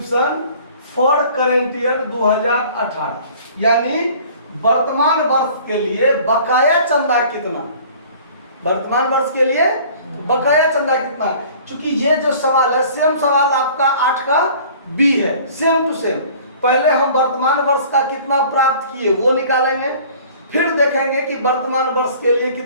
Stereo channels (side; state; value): both; inverted; correlation -0.49